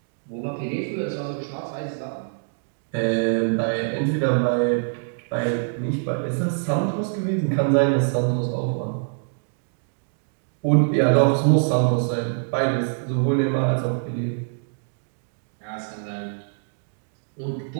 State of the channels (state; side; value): silent; left; digital silence